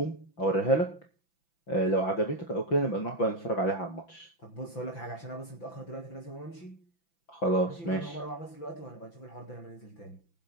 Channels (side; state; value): right; late; 5.9 ms